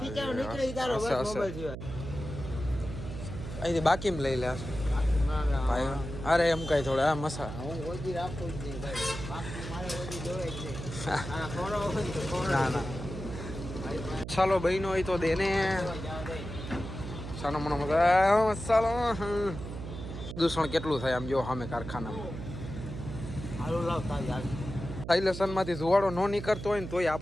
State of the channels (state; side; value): noise; right; hum, 8 dB below the sound